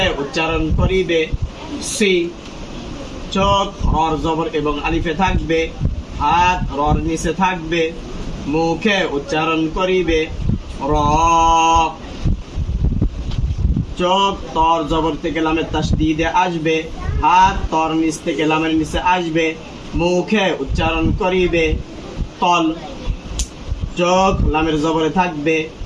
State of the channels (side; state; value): both; identical; correlation 1.00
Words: উচ্চারণ করিবে। সি চোখ রর জবর এবং আলিফে থাকবে, হাত রর নিচে থাকবে, মুখে উচ্চারণ করিবে। র চোখ তর জবর থেকে লামের তাসদীদে আসবে, হাত তর নিচ থেকে লামের নিচে আসবে, মুখে উচ্চারণ করিবে। তল চোখ লামের জবরে থাকবে,